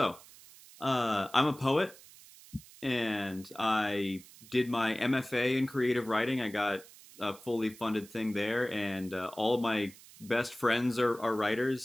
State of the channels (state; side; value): noise; right; hiss, 21 dB below the sound